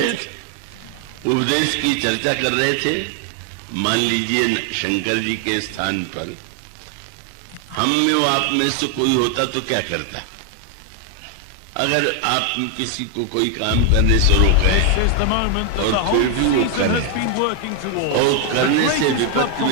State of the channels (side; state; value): both; different; correlation 0.00